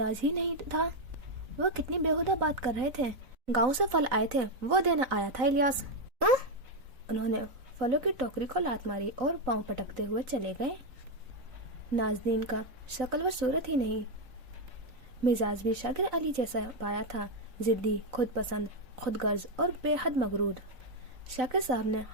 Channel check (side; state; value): left; late; 3.9 ms